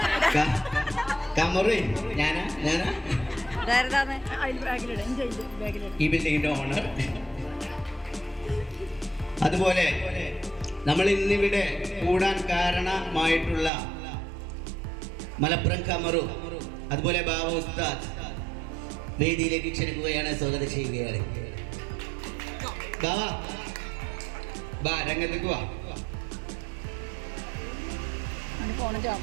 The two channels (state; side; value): drops out; left; at 13.7 s